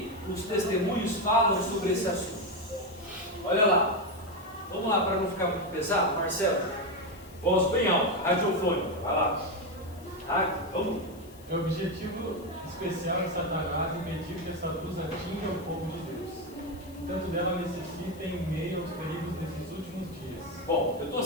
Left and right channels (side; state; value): left; noise; hiss, 24 dB below the sound